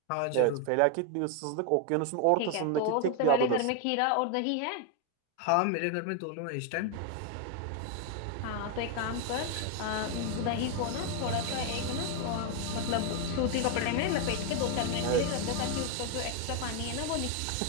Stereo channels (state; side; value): different; both; correlation 0.01